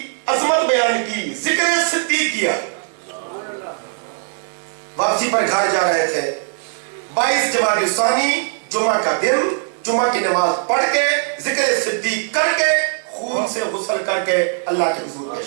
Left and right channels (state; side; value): silent; left; 66 dB below the other